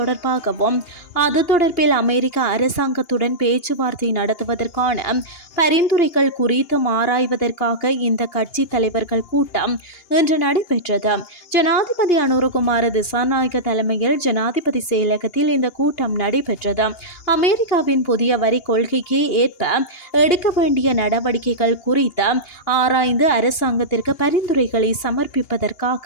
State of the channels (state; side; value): late; right; 2.8 ms